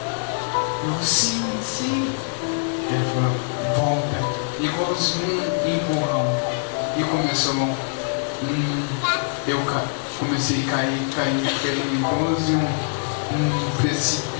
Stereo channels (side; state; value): right; silent; digital silence